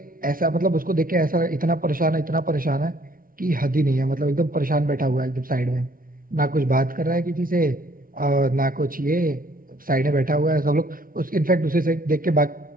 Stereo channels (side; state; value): left; late; 0.41 ms